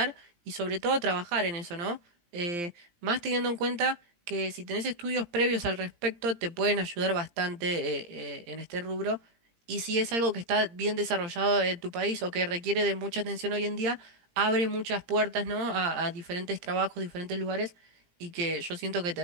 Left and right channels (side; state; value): left; late; 17 ms